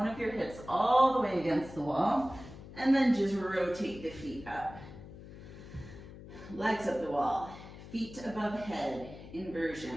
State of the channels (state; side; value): noise; left; hum, 15 dB below the sound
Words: of your hips all the way against the wall, and then just rotate the feet up. Legs up the wall, feet above head,